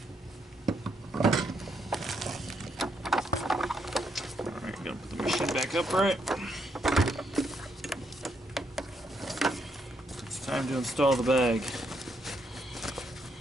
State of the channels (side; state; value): both; normal; correlation 0.76